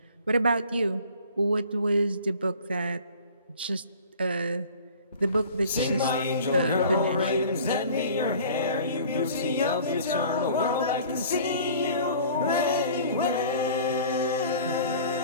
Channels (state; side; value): inverted; both; correlation -0.47